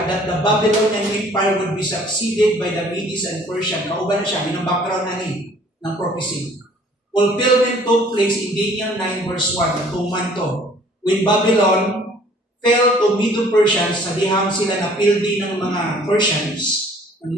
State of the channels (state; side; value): normal; both; correlation 0.55